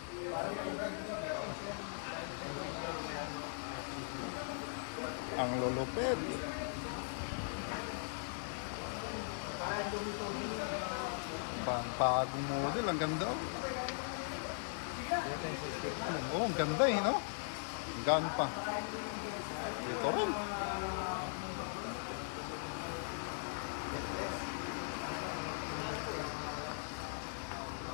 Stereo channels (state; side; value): silent; right; 51 dB below the other